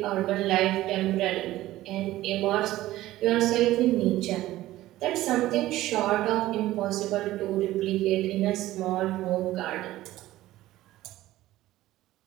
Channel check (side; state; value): left; quieter; 15.7 dB